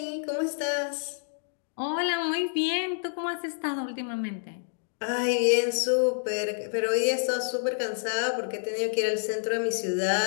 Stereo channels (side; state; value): right; silent; digital silence